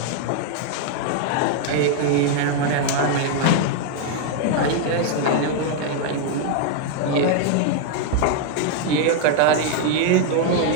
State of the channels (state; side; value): different; both; correlation 0.00